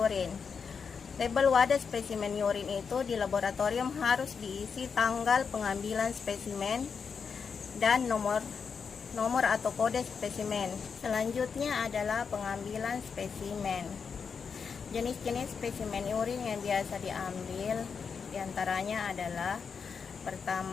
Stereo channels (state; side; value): quieter; right; 6.0 dB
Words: Label wadah spesimen urin itu di laboratorium harus diisi tanggal pengambilan spesimen dan nomor atau kode spesimen. Selanjutnya adalah pengambilan spesimen. Jenis-jenis spesimen urin yang biasa diambil diantaranya adalah